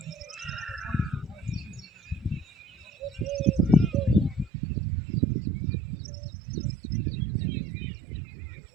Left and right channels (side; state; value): left; drops out; at 4.5 s